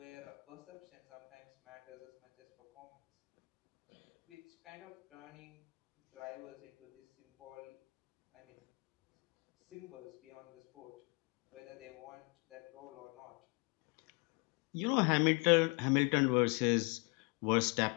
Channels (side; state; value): right; quieter; 31.0 dB